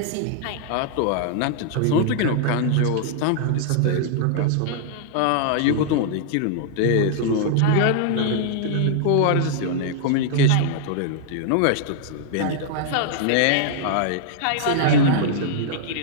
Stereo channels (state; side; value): different; both; correlation -0.01